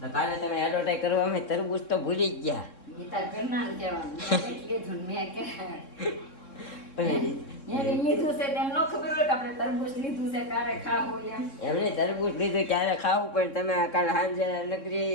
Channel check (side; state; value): right; late; 3.7 ms